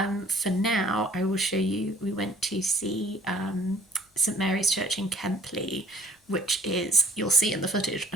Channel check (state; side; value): normal; both; correlation 0.55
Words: now, I will show you. We went to see St Mary's Church in Kempley, which is, you'll see in the footage,